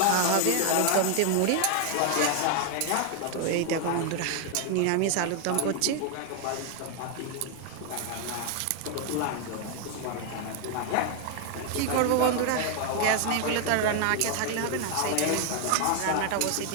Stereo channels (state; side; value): different; both; correlation 0.00